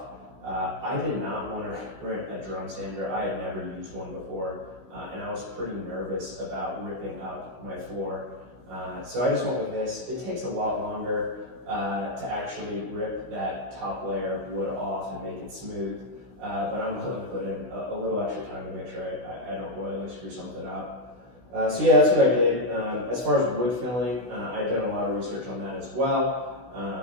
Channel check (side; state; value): left; late; 16 ms